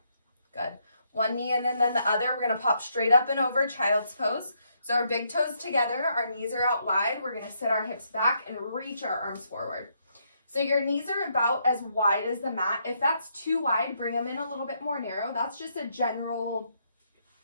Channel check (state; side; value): inverted; both; correlation -0.75